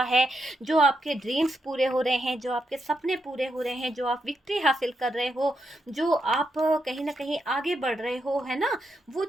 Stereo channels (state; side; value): normal; both; correlation 0.82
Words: है, जो आपके ड्रीम्स पूरे हो रहे हैं, जो आपके सपने पूरे हो रहे हैं, जो आप विक्ट्री हासिल कर रहे हो, जो आप कहीं ना कहीं आगे बढ़ रहे हो, है ना, वो